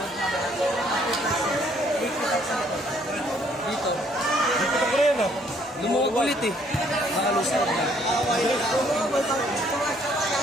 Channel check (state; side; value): normal; both; correlation 0.64